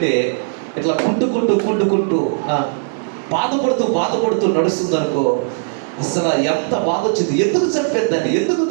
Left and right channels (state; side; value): silent; left; digital silence